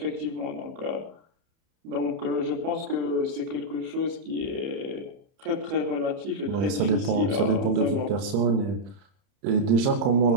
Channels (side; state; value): left; late; 30 ms